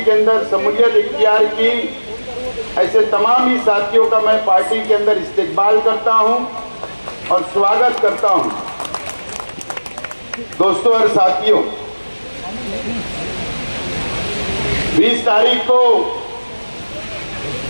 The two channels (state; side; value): inverted; both; correlation -1.00